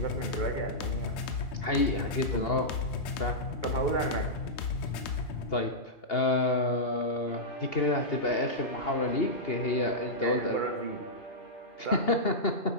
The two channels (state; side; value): late; right; 3.2 ms